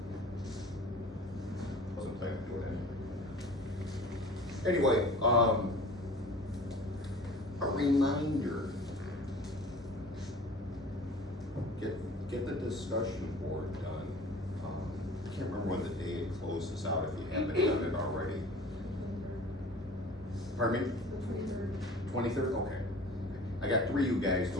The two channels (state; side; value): normal; both; correlation 0.43